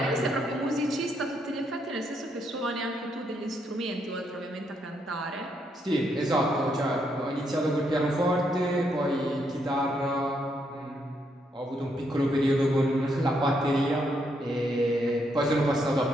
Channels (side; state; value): both; normal; correlation 0.76